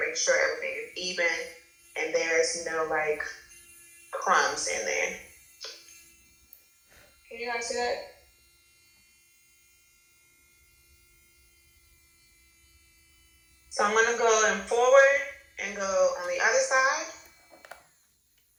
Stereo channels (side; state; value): both; identical; correlation 1.00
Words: make sure everything is even and there's no like crumbs in there. Can you guys see that? So I'm going to go in forward and go on the other side.